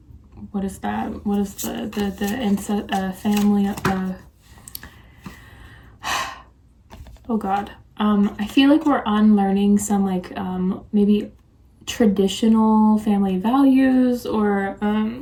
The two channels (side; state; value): both; identical; correlation 1.00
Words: what is that? What is the family, oh god. I feel like we're unlearning some like maybe traditional family values, or